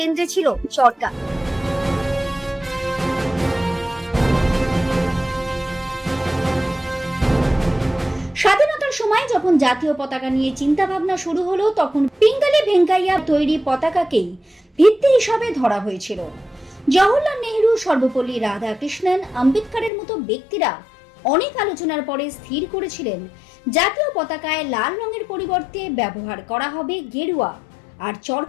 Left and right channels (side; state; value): right; drops out; at 19.9 s